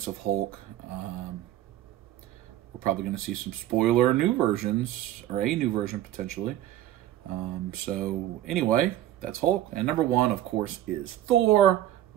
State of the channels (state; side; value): quieter; left; 13.1 dB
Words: of Hulk. We're probably going to see some spoiler new versions, or a new version potentially. So anyway, that's Hulk. And number 1, of course, is Thor,